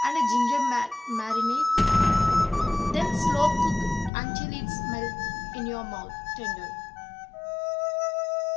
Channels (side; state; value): right; drops out; at 4.1 s